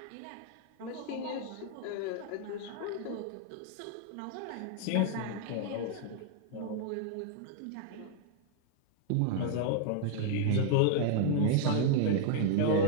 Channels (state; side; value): different; both; correlation -0.01